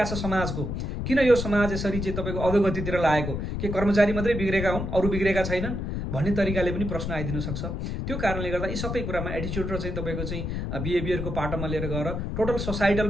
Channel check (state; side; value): noise; left; rumble, 3 dB below the sound